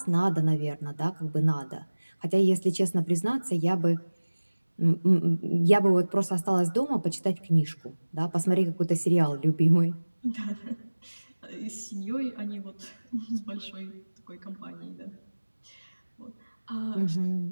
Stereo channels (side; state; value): both; inverted; correlation -1.00